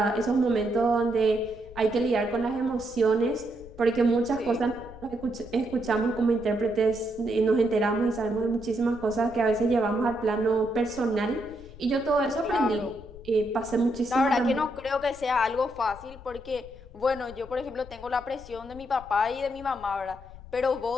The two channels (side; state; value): left; noise; rumble, 18 dB below the sound